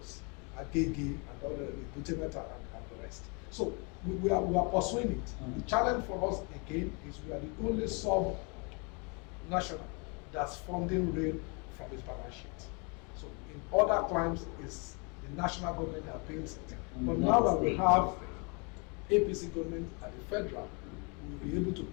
Agege and all the Butemeta and the rest. So we are pursuing it. The challenge for us again is we are the only sub-national that's funding rail from its balance sheet. So in other climes, it's the national government that pays it. But now that we have APC government at the federal, we'll be able to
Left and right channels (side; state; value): right; quieter; 33.2 dB